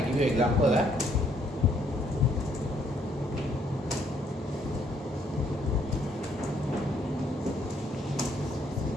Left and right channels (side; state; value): both; normal; correlation 0.68